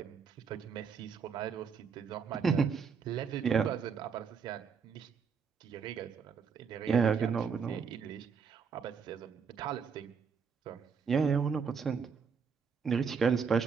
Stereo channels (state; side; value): quieter; left; 6.1 dB